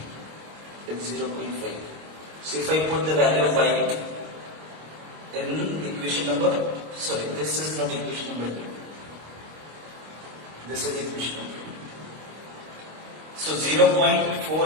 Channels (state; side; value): late; left; 26 ms